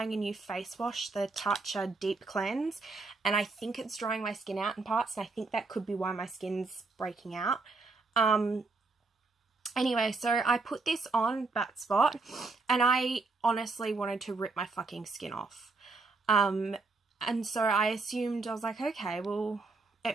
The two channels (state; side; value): quieter; left; 3.9 dB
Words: a new face wash, the Tatcha Deep Cleanse, and I think it's drying my skin out in parts, and I think that could be why my skin's breaking out. Anyway, so I put this on that spot, and I honestly wanted to rip my fucking skin off. And so I assumed, I was like, okay, well, it